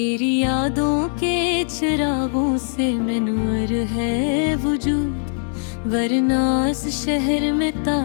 यादों के चिरागों से मनवर है वजूद, वरना इस शहर में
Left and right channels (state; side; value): silent; right; digital silence